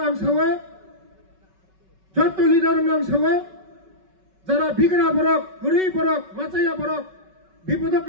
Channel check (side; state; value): left; late; 5.3 ms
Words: आं सावो जत्तो लिडार नाम सावो जरा बिगड़ा बरक गुरी बरक माचाया बरक विपदक